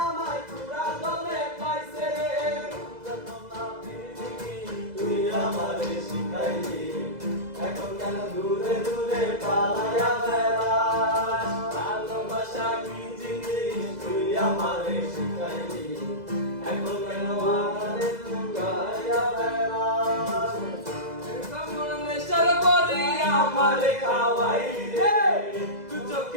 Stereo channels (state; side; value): late; left; 2.0 ms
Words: আমায় পুরা দমে পাইছে রে যতনা পৃথিবী তুই আমারে শিখাইলি এখন কেন দূরে দূরে পালাইয়া বেড়াস ভালোবাসা কি জিনিস তুই আমারে শিখাইলি এখন কেন আমারে লুকাইয়া বেড়াস কেমন নেশার বলি আমারে খাওয়াইলি রে তুই